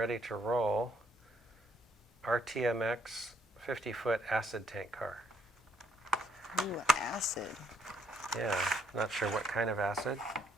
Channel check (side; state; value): both; normal; correlation 0.70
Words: to roll RTMX 50-foot acid tank car. Ooh, acid. Yeah, not sure what kind of acid,